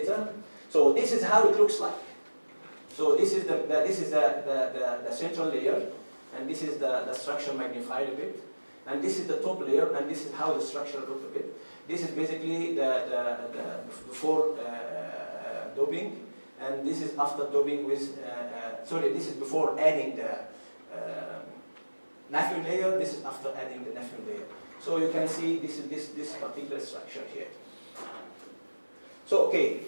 So this is how it looks like. So this is the central layer, and this is the structure magnified a bit, and this is the top layer, and this is how the structure looks a bit. This is basically the before doping, and this is after doping with. This is before adding the naphthalene layer. This is after adding the naphthalene layer. So you can see this is this particular structure here. So okay.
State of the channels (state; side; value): inverted; both; correlation -1.00